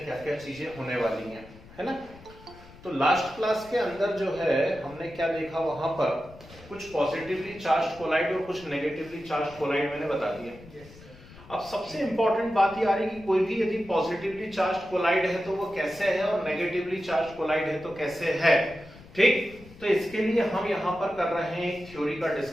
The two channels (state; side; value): noise; left; rumble, 20 dB below the sound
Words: क्या क्या चीजें होने वाली हैं, है ना। तो लास्ट क्लास के अंदर जो है हमने क्या देखा, वहां पर कुछ पॉजिटिवली चार्ज कोलाइड और कुछ नेगेटिवली चार्ज कोलाइड मैंने बता दिया। अब सबसे इंपॉर्टेंट बात ये आ रही है कि कोई भी यदि पॉजिटिवली चार्ज कोलाइड है तो वो कैसे है और नेगेटिवली चार्ज कोलाइड है तो कैसे है, ठीक। तो इसके लिए हम यहाँ पर कर रहे हैं एक थ्योरी का